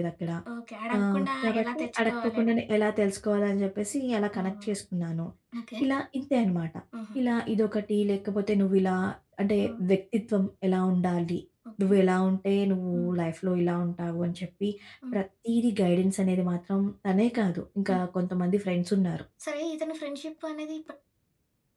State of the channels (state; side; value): identical; both; correlation 1.00